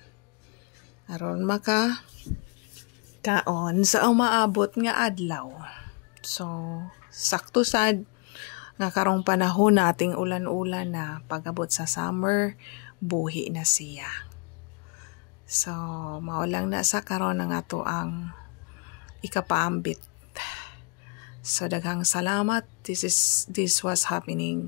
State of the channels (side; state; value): right; quieter; 34.5 dB